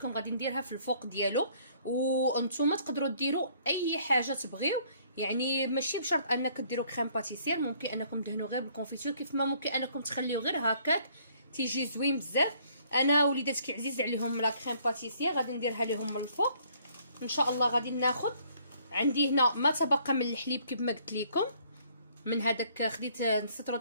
غادي نديرها في الفوق ديالو. وانتم تقدروا ديروا اي حاجه تبغيو، يعني ماشي بشرط انك ديروا كريم باتيسير، ممكن انكم دهنوا غير بالكونفيتور، كيف ما ممكن انكم تخليو غير هكاك تيجي زوين بزاف. انا وليداتك عزيز عليهم لا كريم باتيسير، غادي نديرها لهم من الفوق ان شاء الله. غادي ناخذ عندي هنا ما تبقى من الحليب كيف ما قلت لكم، من هذاك خديت نص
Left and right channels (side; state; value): both; inverted; correlation -0.62